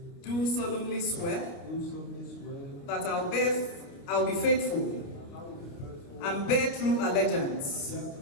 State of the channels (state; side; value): late; right; 29 ms